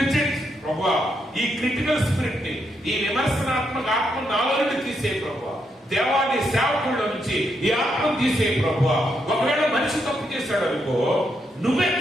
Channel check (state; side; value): normal; both; correlation 0.79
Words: judge. ప్రభువా ఈ క్రిటికల్ స్పిరిట్ ని, ఈ విమర్శనాత్మక ఆత్మ నాలో నుండి తీసే ప్రభువా. దేవాన్ని సేవకుల్లో నుంచి ఈ ఆత్మ తీసే ప్రభువా. ఒకవేళ మనిషి తప్పు చేశాడు అనుకో, నువ్వే